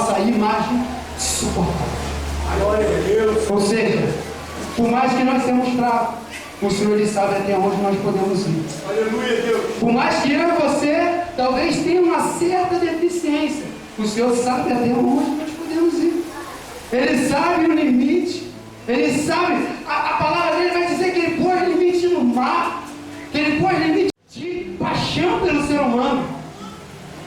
imagem suportar. Glória a Deus. Ou seja, por mais que nós sejamos fracos, o Senhor ele sabe até onde nós podemos ir. Aleluia, Deus. Por mais que eu e você talvez tenha uma certa deficiência, o Senhor sabe até onde nós podemos ir. Ele sabe o limite. Ele sabe, a palavra dele vai dizer que ele pôs limite no mar, que ele pôs limite de paixão pelo ser humano,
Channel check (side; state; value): both; identical; correlation 1.00